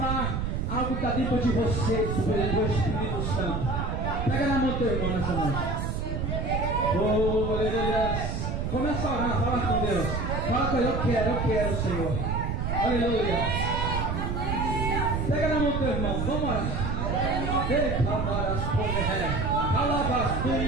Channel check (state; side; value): noise; right; rumble, 1 dB below the sound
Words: algo que está dentro de você, do Espírito Santo. Pega na mão do teu irmão nessa noite. Oh, aleluia. Começa a orar, fala com Deus. Fala com ele, eu quero, Senhor. Aleluia. Pega na mão do teu irmão, vamos orar.